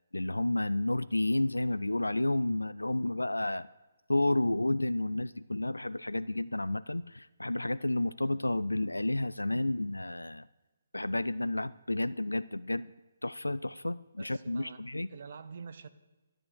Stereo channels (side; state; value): both; inverted; correlation -0.99